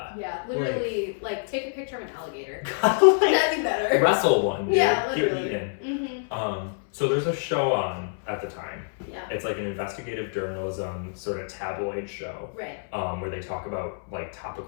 Yeah, literally, like take a picture of an alligator. Like, that'd be better. Wrestle one, dude. Yeah, Get literally. eaten. So there's a show on at the time. Yeah. It's like an investigative journalism sort of tabloid show. Right. Where they talk about like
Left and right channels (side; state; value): right; silent; 60 dB below the other